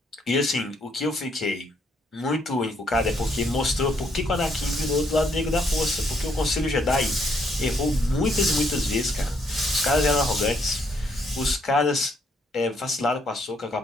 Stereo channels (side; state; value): both; normal; correlation 0.71